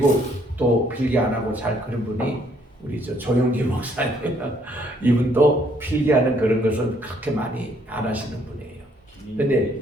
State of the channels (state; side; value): normal; both; correlation 0.66